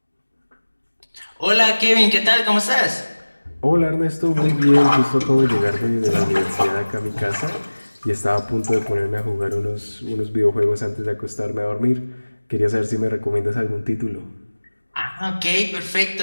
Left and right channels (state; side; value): inverted; both; correlation -1.00